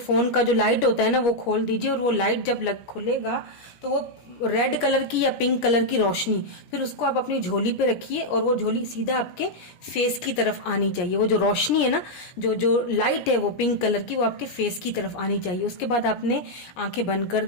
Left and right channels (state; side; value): late; right; 17 ms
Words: का जो लाइट होता है ना वो खोल दीजिए, और वो लाइट जब खुलेगा तो वो रेड कलर की या पिंक कलर की रोशनी, फिर उसको आप अपनी झोली पे रखिए, और वो झोली सीधा आपके फेस की तरफ आनी चाहिए। वो जो रोशनी है ना, जो जो लाइट है वो पिंक कलर की, वो आपके फेस की तरफ आनी चाहिए। उसके बाद आपने आंखें बंद कर